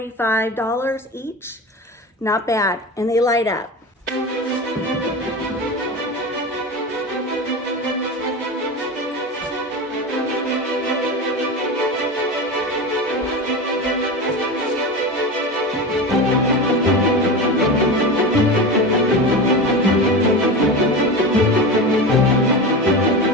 each. Not bad, and they light up.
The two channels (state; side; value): normal; both; correlation 0.25